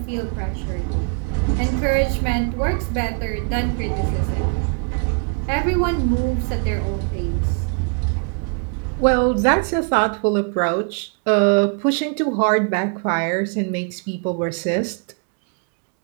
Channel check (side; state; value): left; quieter; 37.5 dB